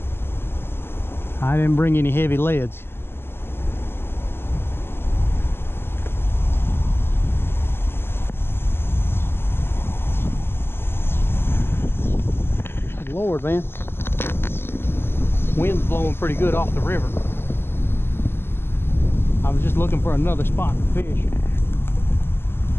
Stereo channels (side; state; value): right; late; 0.11 ms